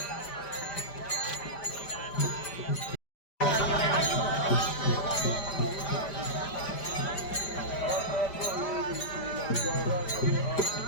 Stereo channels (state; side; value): late; right; 5.0 ms